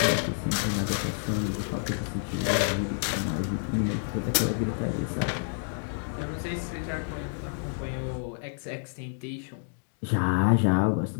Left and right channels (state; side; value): silent; right; digital silence